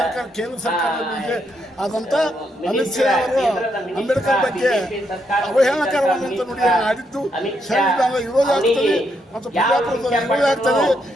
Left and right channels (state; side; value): normal; both; correlation 0.78